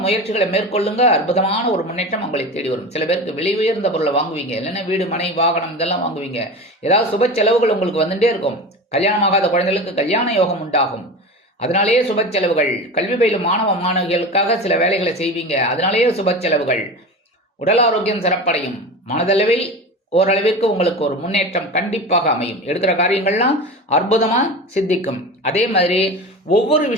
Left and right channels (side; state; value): both; normal; correlation 0.29